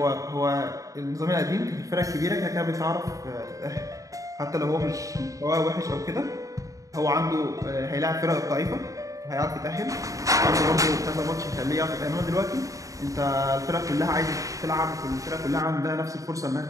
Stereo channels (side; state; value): left; late; 0.16 ms